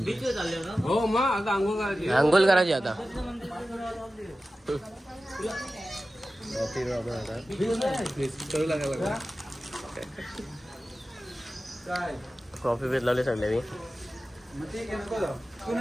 बीचवर चालले ना. हो मग आता आंघोळ करायची आता. कॉफी पेज लावले सगळे.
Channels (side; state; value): both; normal; correlation 0.95